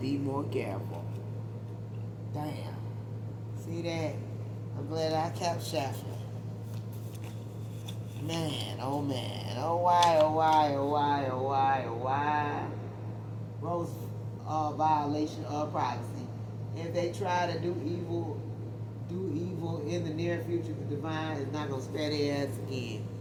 more careful. Damn. See that? I'm glad I kept shuffling. Man, oh man. Oh why, oh why, oh why, oh why, oh why. Gross violation of privacy. If they try to do evil in the near future, the divine is not going to spare their ass again.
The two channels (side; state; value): both; identical; correlation 1.00